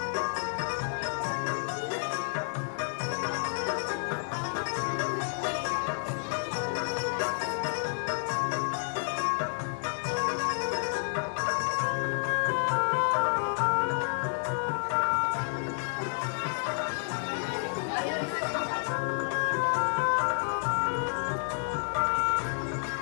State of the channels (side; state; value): right; silent; 58 dB below the other